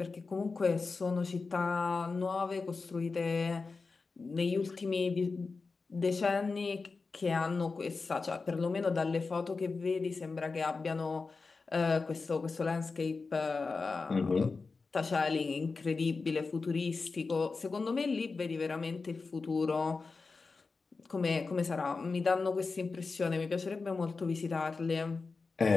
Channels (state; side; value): quieter; right; 4.2 dB